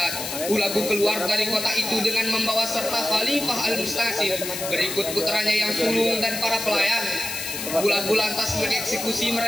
Hulagu keluar dari kota itu dengan membawa serta Khalifah Al-Mustasim, berikut putranya yang sulung dan para pelayan. Hulagu lantas mengeksekusi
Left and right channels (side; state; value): left; noise; hiss, 6 dB below the sound